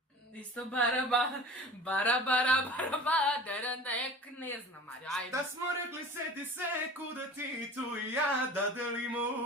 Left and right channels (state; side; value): normal; both; correlation 0.40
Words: Isto bara, derendek, ne znam, Mario, ajde. Šta smo rekli, seti se, kuda ti, tu i ja. Da delimo